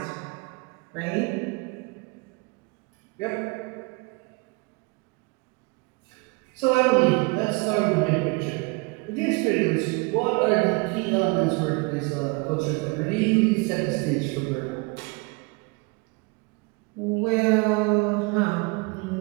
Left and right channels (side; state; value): left; quieter; 29.0 dB